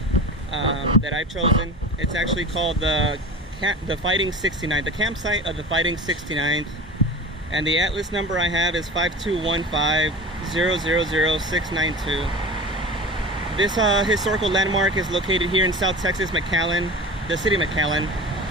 that I've chosen. It's actually called the Fighting 69th, the campsite of the Fighting 69th, and the atlas number I have is 52150000692. This historical landmark is located here in South Texas, McAllen, the city of McAllen.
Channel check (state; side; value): normal; both; correlation 0.33